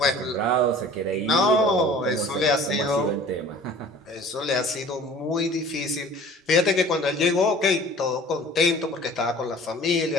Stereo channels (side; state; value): both; normal; correlation 0.46